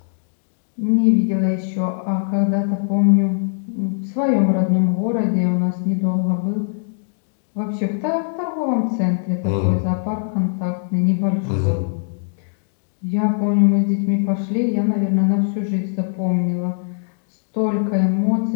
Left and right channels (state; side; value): silent; right; digital silence